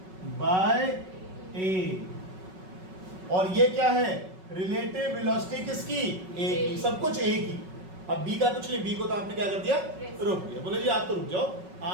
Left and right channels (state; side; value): late; left; 5.4 ms